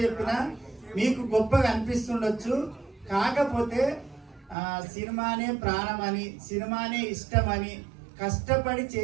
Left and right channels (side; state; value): left; drops out; at 4.5 s